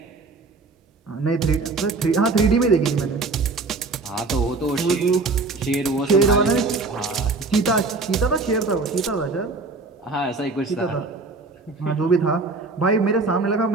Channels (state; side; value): quieter; left; 3.8 dB